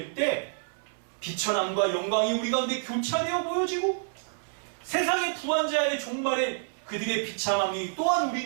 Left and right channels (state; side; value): silent; left; 59 dB below the other